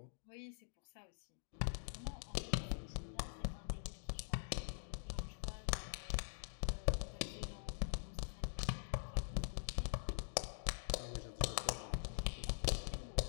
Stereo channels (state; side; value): silent; right; digital silence